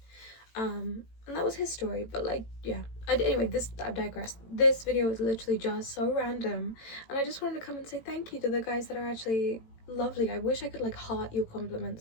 And that was his story. But like, yeah, anyway, I've digressed. This video is literally just so random, and I just wanted to come and say thank you to the guys that are actually lovely. I wish I could like heart your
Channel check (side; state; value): right; late; 18 ms